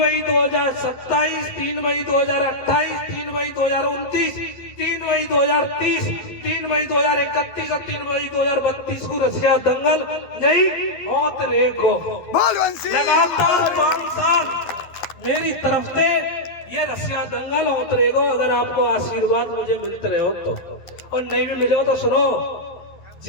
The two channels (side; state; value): right; late; 12 ms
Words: 2027, 3 मई 2028, 3 मई 2029, 3 मई 2030, 3 मई 2031 और 3 मई 2032 को रसिया दंगल नहीं होत रेको लगातार 5 साल मेरी तरफ से ये रसिया दंगल होत रहेगा। अगर आपको आशीर्वाद मुझे मिलते रहे हो तो, और नहीं भी मिले हो तो सुनो,